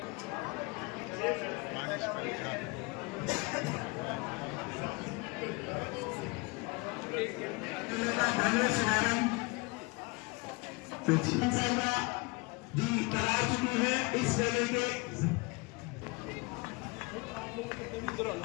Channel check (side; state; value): right; quieter; 27.4 dB